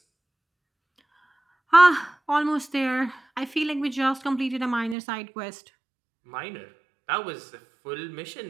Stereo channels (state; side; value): drops out; left; at 5.0 s